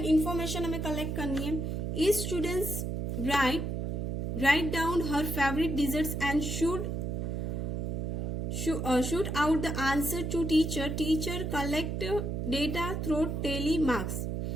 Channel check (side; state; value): right; noise; hum, 2 dB below the sound